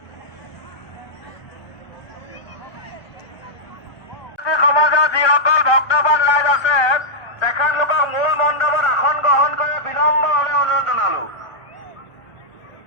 সমাজৰ যিসকল ভক্তবান ৰাইজ আছে তেখেতলোকক মূল মণ্ডপত আসন গ্ৰহণ কৰি বিনম্ৰভাৱে অনুৰোধ জনালো।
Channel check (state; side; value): late; right; 1.4 ms